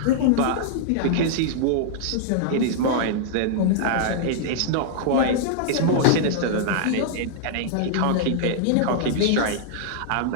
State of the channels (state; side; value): different; both; correlation -0.02